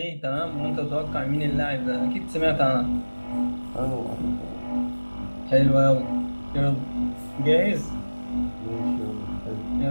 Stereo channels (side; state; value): both; inverted; correlation -1.00